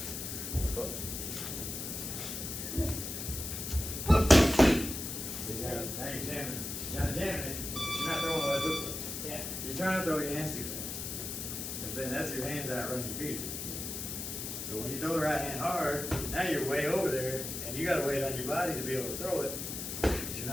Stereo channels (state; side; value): noise; left; hiss, 5 dB below the sound